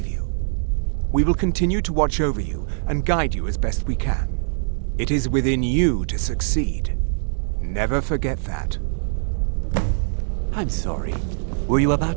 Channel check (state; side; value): silent; left; digital silence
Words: you. We will continue to watch over you and guide you as best we can. It is within you to succeed. Never forget that. I'm sorry. Were you